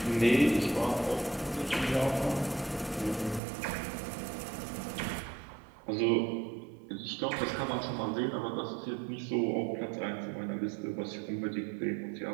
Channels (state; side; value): drops out; left; at 3.4 s